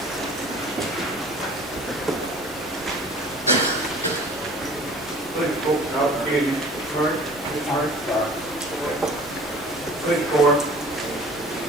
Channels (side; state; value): both; normal; correlation 0.46